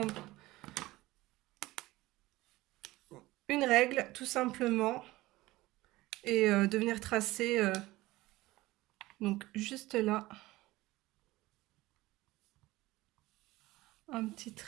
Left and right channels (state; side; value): quieter; left; 18.7 dB